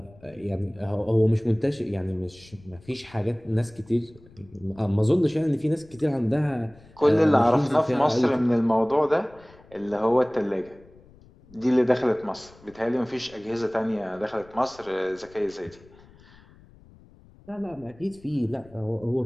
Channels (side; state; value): left; noise; rumble, 25 dB below the sound